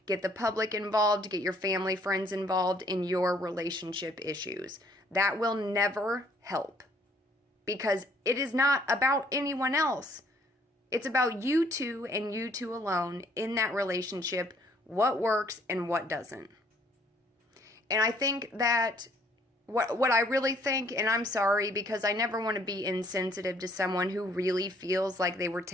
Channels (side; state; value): both; normal; correlation 0.62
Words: get the public involved, get your family, friends involved in your relationship issues. That will never help, because it is not about anyone else. It's about you two and you two alone in that relationship, what works and what doesn't. And I think that what I really think, and I'm sorry because I never want to be insensitive to someone who really feels like they were